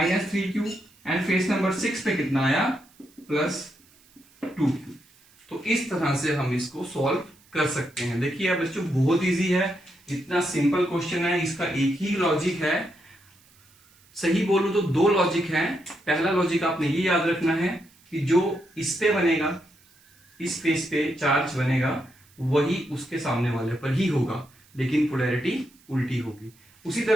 3q, and face number 6 पे कितना आया, प्लस 2q। तो इस तरह से हम इसको सॉल्व कर सकते हैं। देखिए अब बच्चों बहुत इजी है, इतना सिंपल क्वेश्चन है, इसका एक ही लॉजिक है, सही बोलूं तो 2 लॉजिक हैं। पहला लॉजिक आपने ये याद रखना है कि जो इस पे बनेगा, इस फेस पे चार्ज बनेगा वही उसके सामने वाले पर ही होगा, लेकिन पोलैरिटी उल्टी होगी। उसी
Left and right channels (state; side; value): noise; right; hiss, 30 dB below the sound